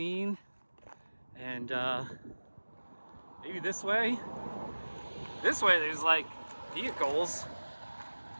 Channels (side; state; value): both; inverted; correlation -1.00